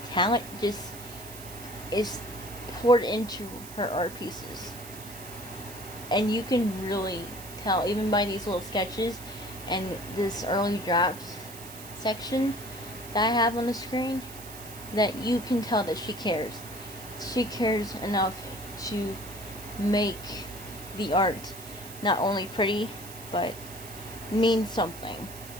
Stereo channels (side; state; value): right; noise; hiss, 14 dB below the sound